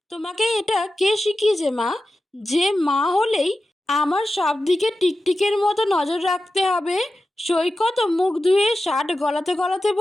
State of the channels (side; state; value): both; normal; correlation 0.93